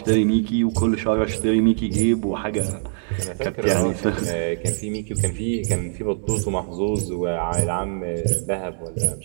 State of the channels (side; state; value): left; silent; digital silence